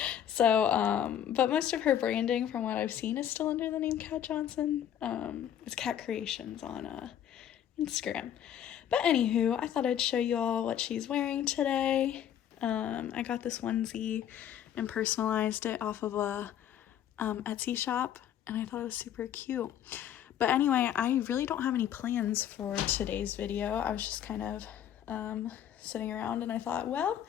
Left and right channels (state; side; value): quieter; right; 10.2 dB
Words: But most of her branding from what I've seen is still under the name Kat Johnson. It's Kat Creations on Instagram. But anywho, I thought I'd show you all what she's wearing today. I got this onesie and personalized it off of a Etsy shop, and I thought it was super cute. But anyway, I really don't have any plans for today's video. I was just kind of sitting around, and I thought, well,